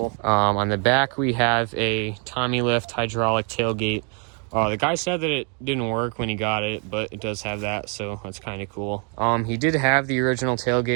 On the back, we have a Tommy lift hydraulic tailgate. The guy said that it didn't work when he got it, but it does have that, so that's kind of cool. He did have the original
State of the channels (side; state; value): left; quieter; 37.8 dB